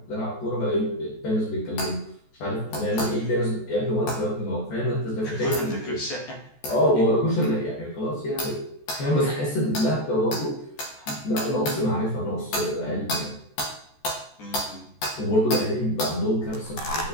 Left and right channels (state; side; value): late; right; 14 ms